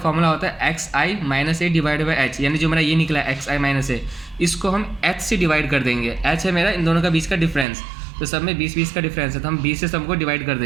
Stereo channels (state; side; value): drops out; left; at 7.7 s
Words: होता है XI minus A divide by H, यानी जो मेरा ये निकला है XI माइनस ए, इसको हम H से डिवाइड कर देंगे। H है मेरा इन दोनों का बीच का डिफरेंस, तो सब में 20-20 का डिफरेंस है, तो हम 20 से सबको डिवाइड कर